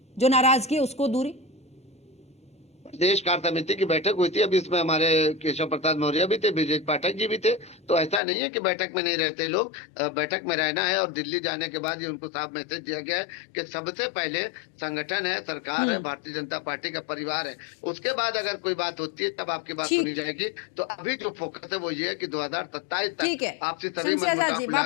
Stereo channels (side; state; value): right; drops out; at 8.2 s